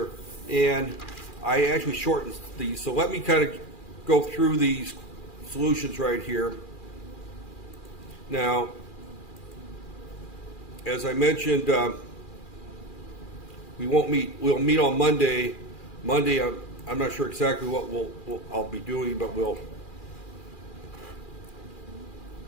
And I actually shortened these, so let me kind of go through these solutions right here. Now, as I mentioned, we'll meet on Monday. Monday, I'm not sure exactly what I'll be doing, but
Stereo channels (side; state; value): right; late; 2.4 ms